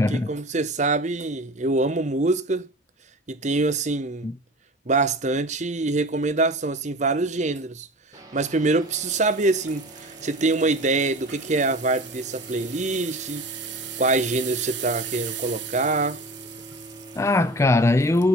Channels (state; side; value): normal; both; correlation 0.37